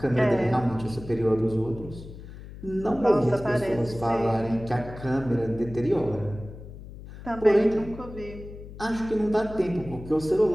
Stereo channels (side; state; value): left; noise; hum, 14 dB below the sound